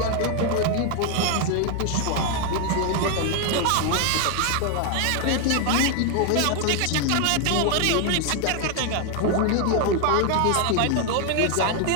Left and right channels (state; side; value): different; both; correlation 0.01